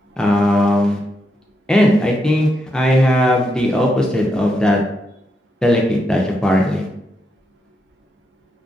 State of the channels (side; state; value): both; normal; correlation 0.81